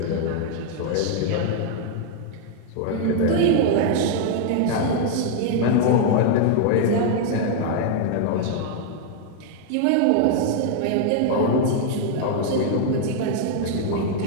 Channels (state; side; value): different; both; correlation 0.00